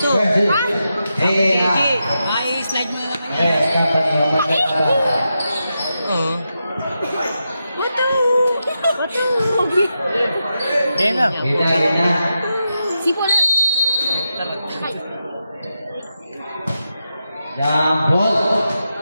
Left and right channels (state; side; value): inverted; both; correlation -0.88